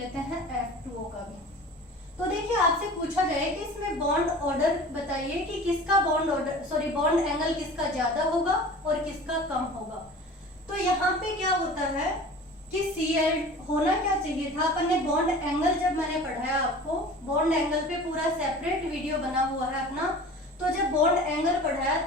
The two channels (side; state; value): both; normal; correlation 0.40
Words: हैं F2O का भी, तो देखिए आपसे पूछा जाए कि इसमें बॉन्ड ऑर्डर बताइए कि किसका बॉन्ड एंगल किसका ज्यादा होगा और किसका कम होगा। तो यहाँ पे क्या होता है कि Cl होना क्या चाहिए था, अपन ने बॉन्ड एंगल जब मैंने पढ़ाया आपको, बॉन्ड एंगल पे पूरा सेपरेट वीडियो बना हुआ है अपना, तो जब बॉन्ड एंगल पढ़ाया